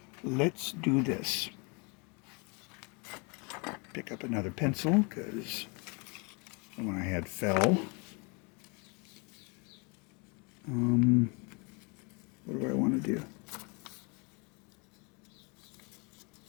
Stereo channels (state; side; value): quieter; right; 32.0 dB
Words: let's do this. Pick up another pencil because the one I had fell. What do I want to do?